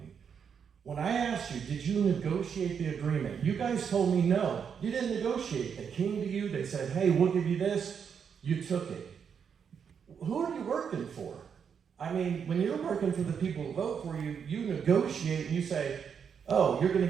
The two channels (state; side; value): quieter; left; 7.1 dB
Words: When I asked you, did you negotiate the agreement? You guys told me no. You didn't negotiate. They came to you, they said, hey, we'll give you this. You took it. Who are you working for? I mean, when you're working for the people who vote for you, you negotiate and you say, oh, you're going